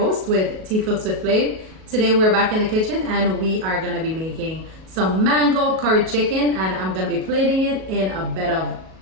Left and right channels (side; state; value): left; late; 37 ms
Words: with Tea Cooks with FLAVE. Today we're back in the kitchen and we are gonna be making some mango curry chicken, and I'm gonna be plating it in a bed of